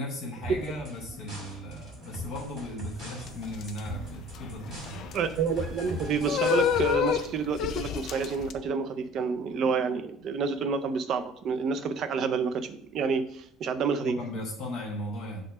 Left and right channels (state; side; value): normal; both; correlation 0.50